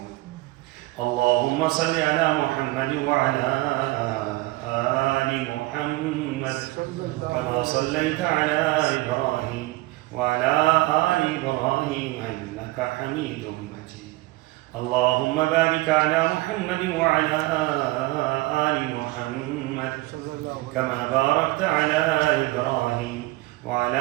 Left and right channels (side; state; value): left; quieter; 20.4 dB